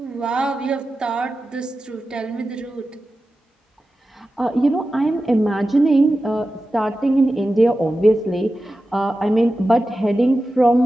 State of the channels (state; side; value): normal; both; correlation 0.93